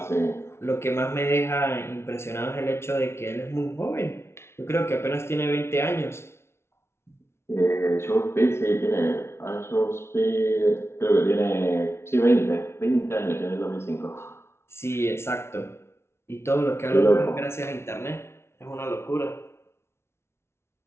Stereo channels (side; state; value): right; late; 0.12 ms